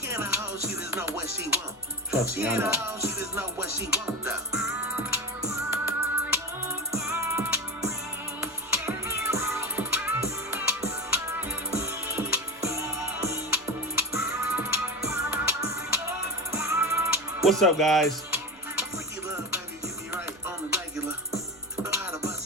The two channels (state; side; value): noise; left; rumble, 30 dB below the sound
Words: ain't a hoe, she just know what she want. Trust me, I know. She just know what she want, though. What's up, guys? Freaky love, baby, get me right on the regular. Know how to bust